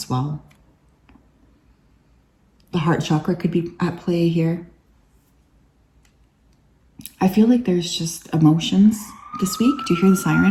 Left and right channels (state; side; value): identical; both; correlation 1.00